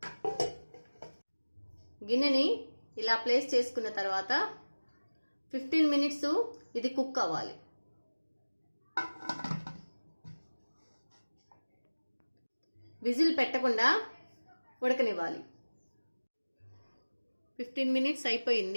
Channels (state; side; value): inverted; both; correlation -1.00